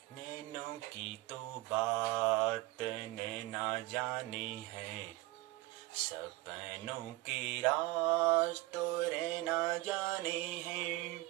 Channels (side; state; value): left; quieter; 19.8 dB